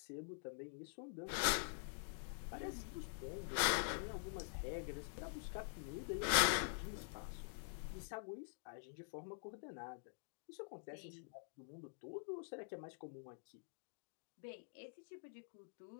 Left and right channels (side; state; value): right; silent; digital silence